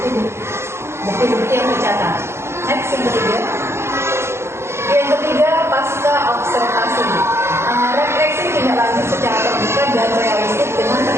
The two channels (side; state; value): left; late; 0.13 ms